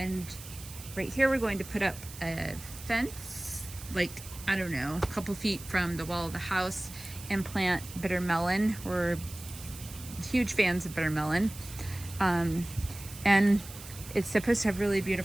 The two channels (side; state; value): right; noise; hiss, 15 dB below the sound